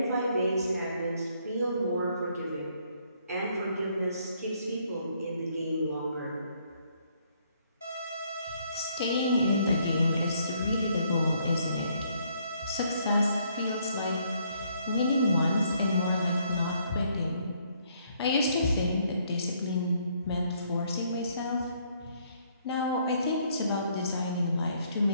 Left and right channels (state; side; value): inverted; both; correlation -0.68